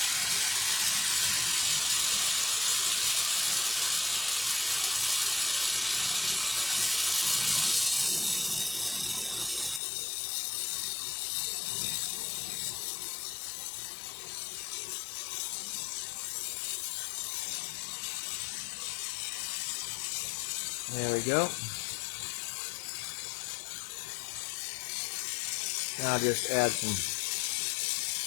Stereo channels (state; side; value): drops out; right; at 9.8 s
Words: There we go. Now I'll just add some